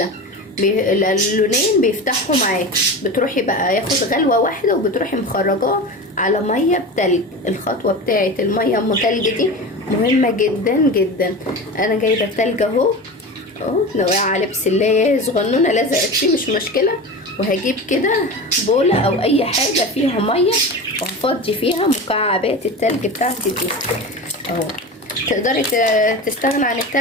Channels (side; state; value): both; normal; correlation 0.28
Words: اللونين بيفتحوا معاكي، بتروحي بقى ياخد غلوه واحده وبتروحي مخرجاه على ميه بتلج. الخطوه بتاعه الميه ام تلج دي مهمه جدا جدا. انا جايبه التلج اهو نوقع عليه بسلايه صغنونه لزقت فيه مش مشكله، وهجيب كده بوله او اي حاجه فيها ميه وهفضي فيها مكعبات التلج بتاعتي دي اهو. تقدري تستغنى عن